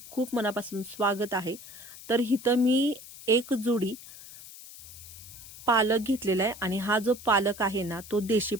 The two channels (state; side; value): noise; left; hiss, 16 dB below the sound